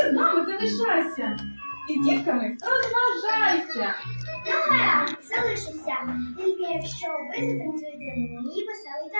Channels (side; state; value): both; inverted; correlation -1.00